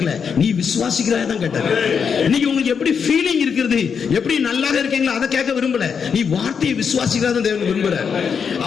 நீ விசுவாசிக்கிறாய் தான் கேட்டாரு. இன்னைக்கு உங்களுக்கு எப்படி ஃபீலிங் இருக்குது, எப்படி நல்லா இருக்கீங்களா அதை கேட்க விரும்பல, நீ வார்த்தையை விசுவாசிக்கிறதா தேவன் விரும்புறார்.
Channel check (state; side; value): quieter; right; 6.5 dB